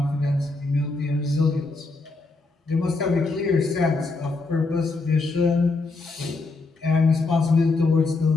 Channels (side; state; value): right; quieter; 3.6 dB